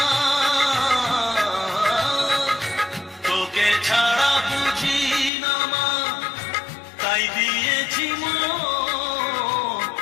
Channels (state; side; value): drops out; right; at 5.3 s